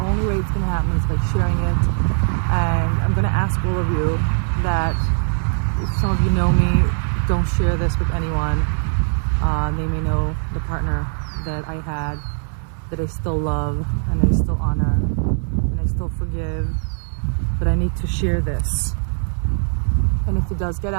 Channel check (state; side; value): silent; left; digital silence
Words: way it's going to happen is by sharing it. And I'm going to ask all of you that if some of you know me, don't share this with anyone. They may know the partner that I had, that I still love, and I still honor, and I still forgive, but I need to share this. And if it does get